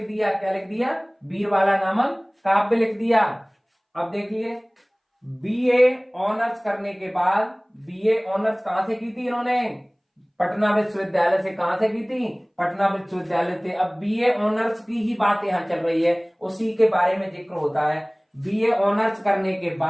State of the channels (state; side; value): identical; both; correlation 1.00